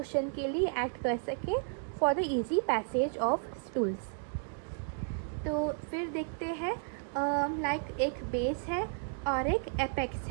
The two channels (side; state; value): left; silent; 56 dB below the other